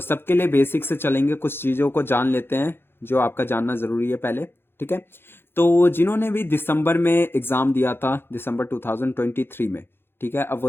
सबके लिए बेसिक से चलेंगे, कुछ चीज़ों को जान लेते हैं जो आपका जानना ज़रूरी है पहले। ठीक है, तो जिन्होंने भी दिसंबर में एग्ज़ाम दिया था, दिसंबर 2023 में, ठीक है, अब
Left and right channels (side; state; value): right; late; 0.11 ms